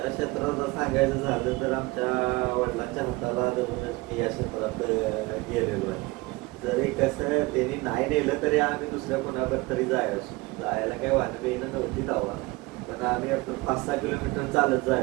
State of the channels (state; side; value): quieter; left; 23.0 dB